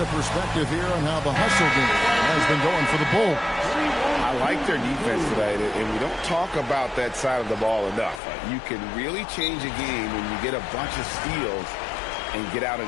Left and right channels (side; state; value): right; drops out; at 8.2 s